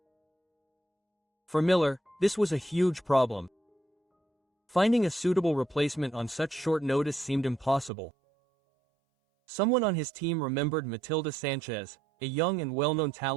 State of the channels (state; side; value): drops out; left; at 7.9 s